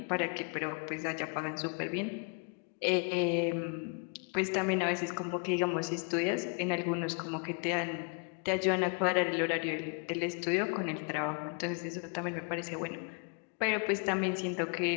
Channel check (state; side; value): quieter; right; 38.2 dB